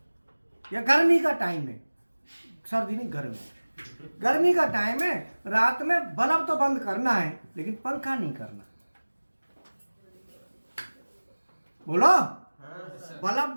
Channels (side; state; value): both; inverted; correlation -1.00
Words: या गर्मी का टाइम है, सर्दी नहीं गर्मी का टाइम है, रात में बल्ब तो बंद करना है लेकिन पंखा नहीं करना। बोलो, बल्ब